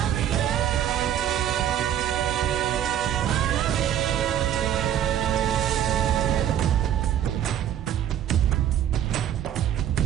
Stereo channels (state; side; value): quieter; left; 10.6 dB